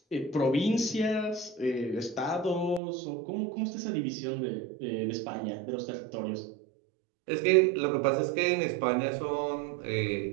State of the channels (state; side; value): drops out; left; at 2.8 s